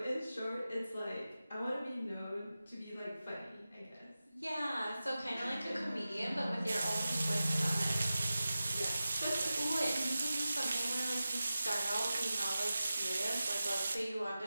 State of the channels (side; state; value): both; inverted; correlation -0.94